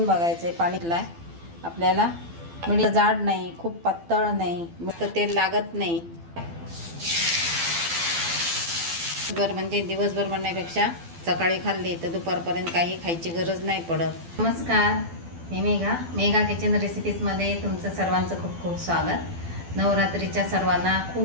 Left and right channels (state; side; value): late; left; 12 ms